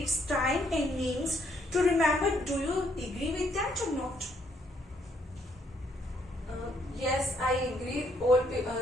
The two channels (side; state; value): both; normal; correlation 0.70